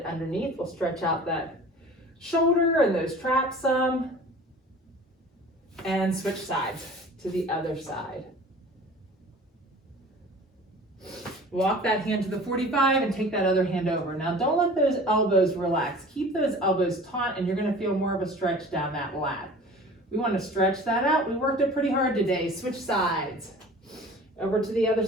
underneath. We'll stretch out that shoulder and those traps some. And switch sides to the other side. Walk that hand to the 45 and take that other hand over. Now don't let those elbows relax. Keep those elbows taut and you're gonna feel more of a stretch down that lat. We wanna stretch that out. We worked it pretty hard today. Switch sides. Over to the other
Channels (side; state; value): both; normal; correlation 0.43